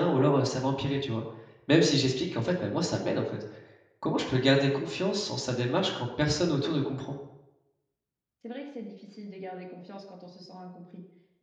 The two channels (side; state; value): both; identical; correlation 1.00